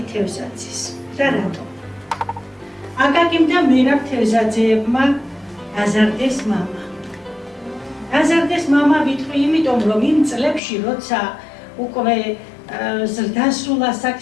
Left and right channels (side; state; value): right; drops out; at 10.6 s